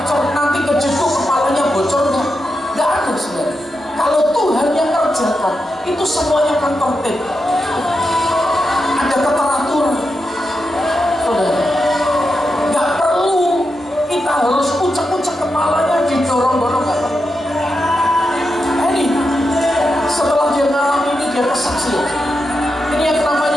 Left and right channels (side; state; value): both; normal; correlation 0.87